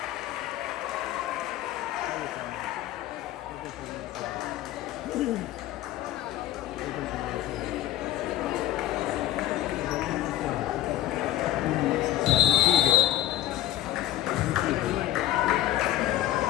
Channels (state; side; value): quieter; right; 13.7 dB